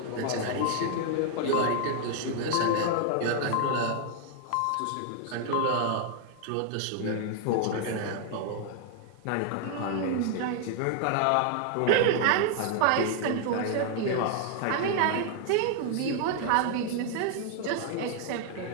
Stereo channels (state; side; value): different; both; correlation 0.00